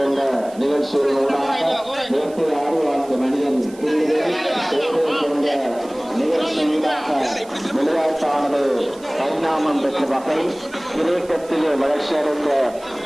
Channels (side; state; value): right; noise; hiss, 23 dB below the sound